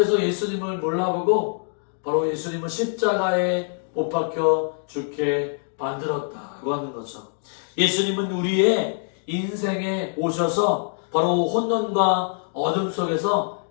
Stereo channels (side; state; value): right; silent; 63 dB below the other